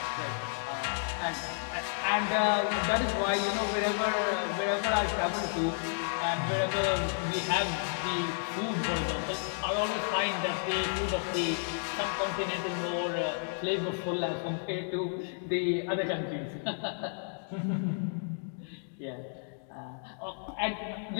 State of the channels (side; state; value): right; silent; digital silence